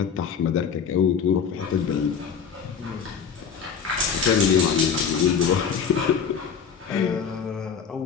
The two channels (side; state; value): right; quieter; 6.8 dB